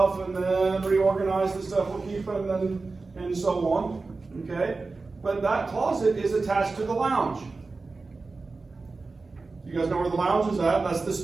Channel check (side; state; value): left; quieter; 3.9 dB